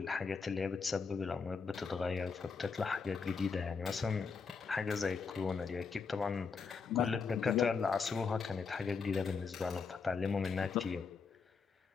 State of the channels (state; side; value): quieter; right; 5.2 dB